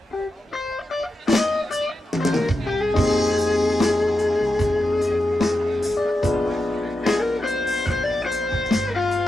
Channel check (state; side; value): normal; both; correlation 0.89